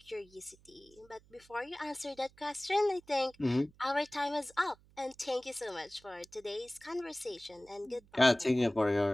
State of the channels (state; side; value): noise; right; hum, 28 dB below the sound